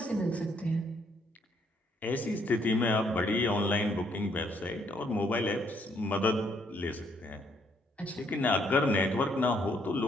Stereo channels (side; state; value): both; normal; correlation 0.70